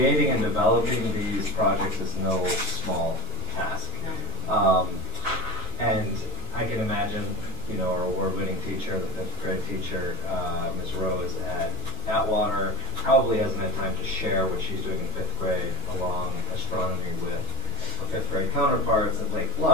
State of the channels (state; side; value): normal; both; correlation 0.21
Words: and developing these projects is no small task. And I can imagine, our award-winning teacher, the 5th grade teacher, Ms. Rose at Atwater, probably hasn't had time to share what she's doing in 5th grade along astronomy with her 5th grade counterparts at Lake